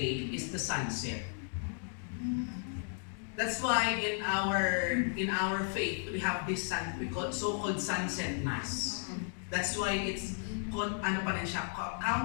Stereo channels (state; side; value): silent; right; 55 dB below the other